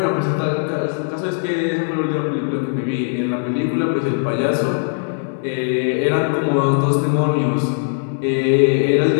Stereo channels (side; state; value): right; silent; digital silence